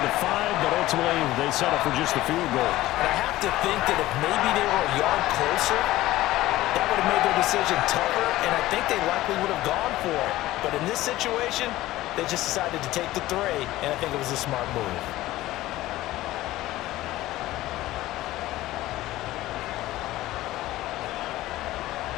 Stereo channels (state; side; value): quieter; right; 16.4 dB